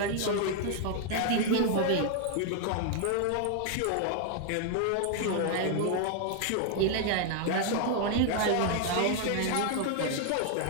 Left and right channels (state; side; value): different; both; correlation 0.00